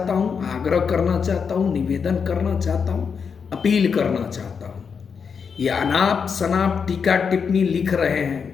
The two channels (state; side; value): quieter; right; 6.2 dB